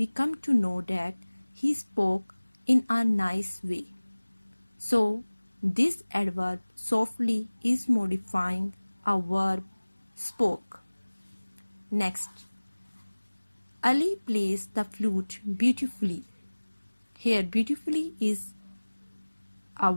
come to know that he spoke in a nice way. So this adverb softly is modifying a verb spoke. Next, Ali plays the flute beautifully. Here beautifully is a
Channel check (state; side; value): inverted; both; correlation -1.00